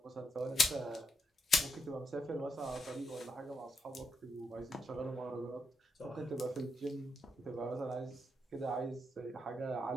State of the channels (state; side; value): normal; both; correlation 0.81